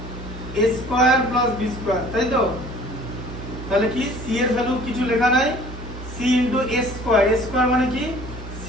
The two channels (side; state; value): both; normal; correlation 0.50